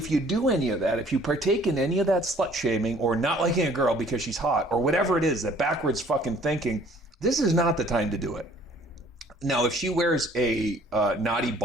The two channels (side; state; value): both; normal; correlation 0.56